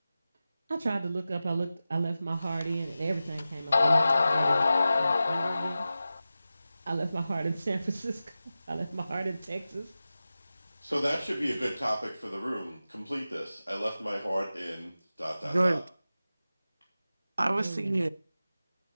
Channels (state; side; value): inverted; both; correlation -0.94